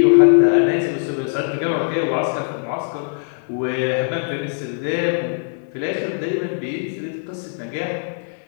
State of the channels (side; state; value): right; silent; 62 dB below the other